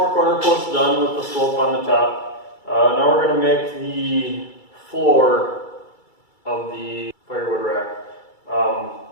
corner posts done with the slope on the top. Now we're going to make the floor of the firewood rack.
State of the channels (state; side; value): late; right; 2.3 ms